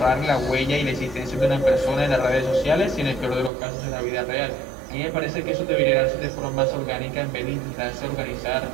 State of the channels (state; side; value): drops out; left; at 3.5 s